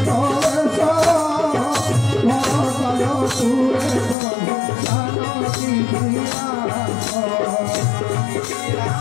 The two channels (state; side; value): drops out; right; at 4.2 s